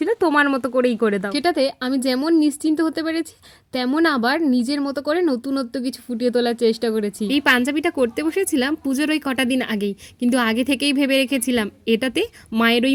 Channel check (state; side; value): identical; both; correlation 1.00